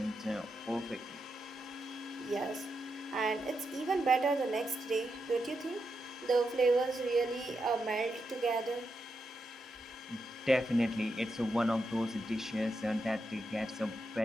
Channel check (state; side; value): normal; both; correlation 0.85